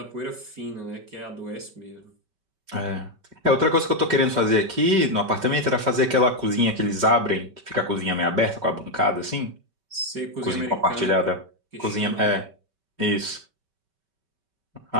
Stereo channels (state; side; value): late; left; 5.2 ms